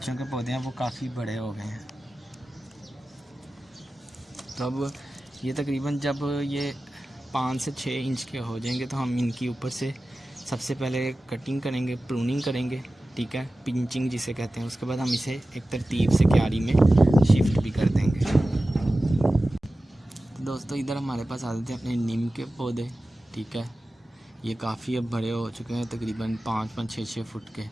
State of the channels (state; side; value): normal; both; correlation 0.95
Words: के पौधे हैं वो काफ़ी बड़े हो गए हैं। तो अब ये तकरीबन जब ये 5 से 6 इंच के हो जाएंगे, तो हम इनकी ऊपर से सबसे पहले कटिंग करेंगे, प्रूनिंग करेंगे, ठीक है, पिंचिंग जिसे कहते हैं। उसके बाद हम इसे एक तरतीब से क्यारी में शिफ्ट भी कर देंगे। तो दोस्तों, इधर हमारे पास आ जाते हैं अपने नीम के पौधे, ठीक है। ये काफ़ी अब बड़े हो चुके हैं, तकरीबन 5-5, 6-6 फुट के।